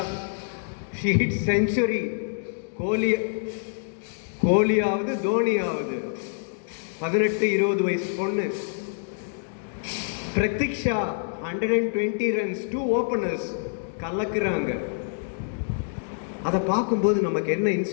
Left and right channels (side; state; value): right; silent; digital silence